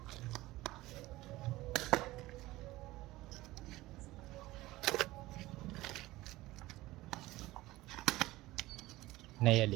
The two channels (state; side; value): quieter; left; 18.2 dB